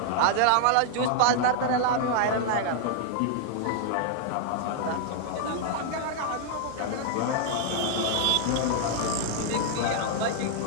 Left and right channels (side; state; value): both; different; correlation 0.00